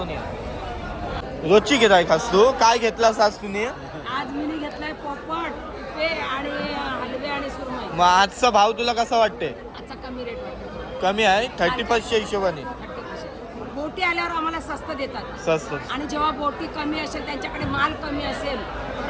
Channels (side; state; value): both; identical; correlation 1.00